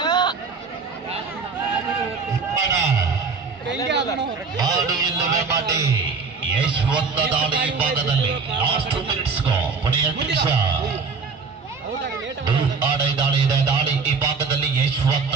ಆಡು ಇಲ್ಲವೇ ಮಾಡಿ ಯಶವಂತ ದಾಳಿ ಭಾಗದಲ್ಲಿ ಲಾಸ್ಟ್ 2 ಮಿನಿಟ್ಸ್ ಕೊನೆಯ ನಿಮಿಷ. ದಾಳಿ ಇದೆ. ದಾಳಿ ಈ ಭಾಗದಲ್ಲಿ ಯಶವಂತ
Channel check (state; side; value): quieter; left; 4.8 dB